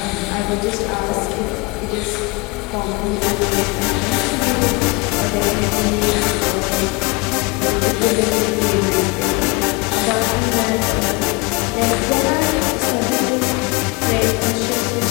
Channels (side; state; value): right; quieter; 27.0 dB